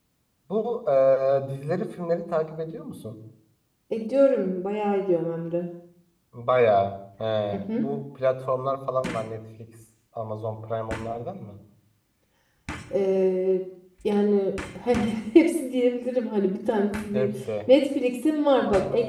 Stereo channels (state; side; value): identical; both; correlation 1.00